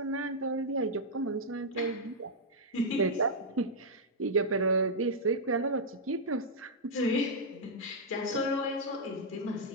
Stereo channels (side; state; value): both; normal; correlation -0.05